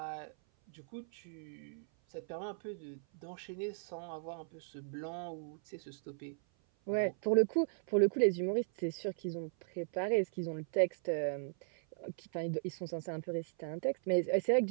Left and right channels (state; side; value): silent; left; 53 dB below the other